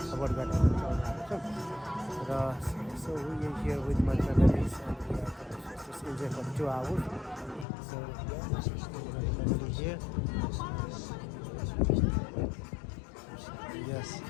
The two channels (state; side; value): drops out; right; at 7.7 s